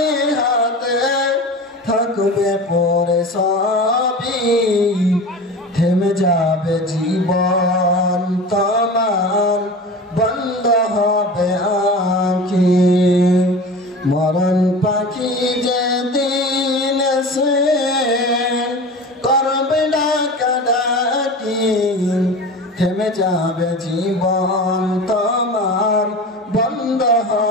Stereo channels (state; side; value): normal; both; correlation 0.33